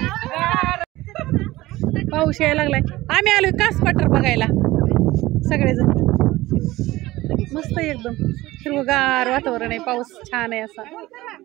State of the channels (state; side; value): quieter; left; 18.0 dB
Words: पाऊस यायला लागलाय. आम्ही आलोय कास पठार बघायला सगळेजण. मस्त एकदम हिरवगार वातावरण आहे. पाऊस छान आहे, असा